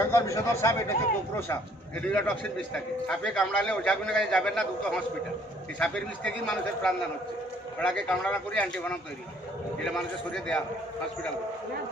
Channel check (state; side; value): normal; both; correlation 0.61